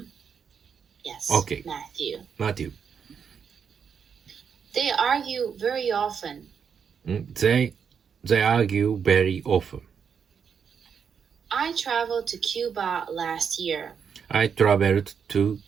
Yes. Okay. Matthew. They argue very often. They argue very often. I traveled to Cuba last year. I traveled to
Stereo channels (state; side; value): quieter; left; 6.9 dB